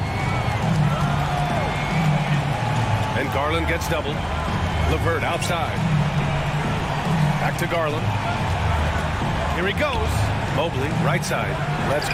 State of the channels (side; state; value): both; identical; correlation 1.00